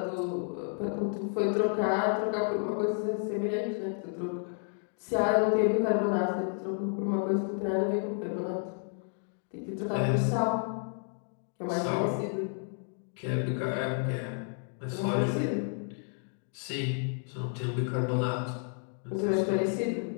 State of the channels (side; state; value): right; silent; 55 dB below the other